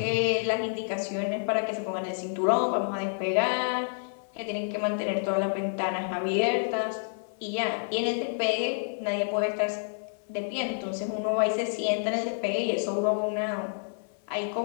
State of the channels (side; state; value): right; silent; 59 dB below the other